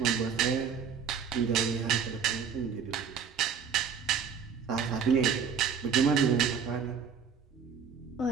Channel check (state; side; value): quieter; left; 6.7 dB